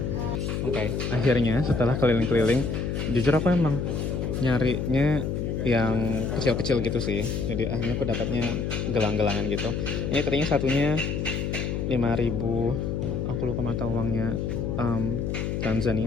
Oke, akhirnya setelah keliling-keliling, jujur aku emang nyarinya yang kecil-kecil gitu sih. Jadi akhirnya aku dapatnya gelang-gelangan gitu. Ini tadinya satunya 5.000. Aku lupa mata uangnya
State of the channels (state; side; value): noise; left; hum, 1 dB below the sound